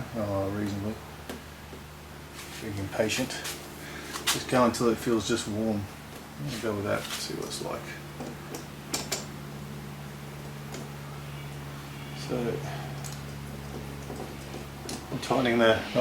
reasonably. Being impatient. Just go until it feels just warm. I'll go with that, see what it's like. So, I'm tightening the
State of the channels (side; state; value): both; identical; correlation 1.00